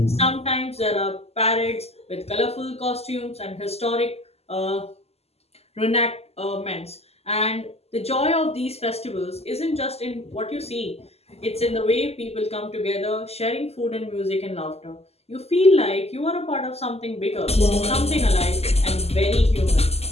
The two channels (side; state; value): right; late; 0.30 ms